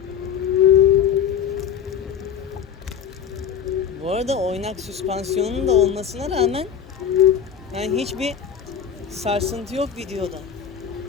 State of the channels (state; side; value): quieter; right; 7.9 dB